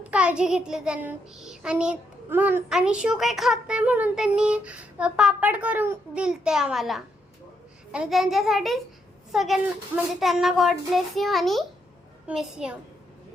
काळजी घेतली त्यांनी आणि शिव काही खात नाही म्हणून त्यांनी पापड करून दिलते आम्हाला आणि त्यांच्यासाठी सगळ्यांना म्हणजे त्यांना गॉड ब्लेस यू आणि मिस यू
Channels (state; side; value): normal; both; correlation 0.77